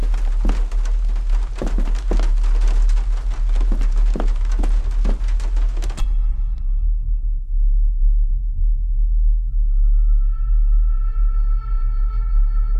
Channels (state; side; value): identical; both; correlation 1.00